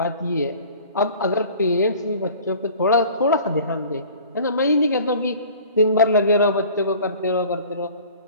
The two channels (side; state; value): both; inverted; correlation -0.46